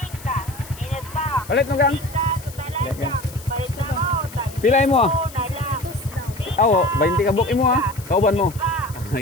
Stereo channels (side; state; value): left; noise; hiss, 18 dB below the sound